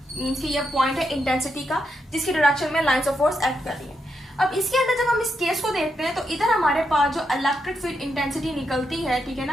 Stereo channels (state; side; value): normal; both; correlation 0.83